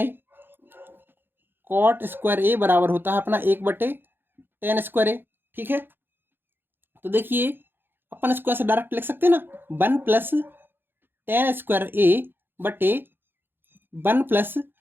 ए, कॉट स्क्वायर ए बराबर होता है अपना 1 बटे tan स्क्वायर ए। ठीक है, तो देखिए अपन इसको ऐसे डायरेक्ट लिख सकते हैं ना, 1 + tan स्क्वायर ए बटे 1 +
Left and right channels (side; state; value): left; late; 0.10 ms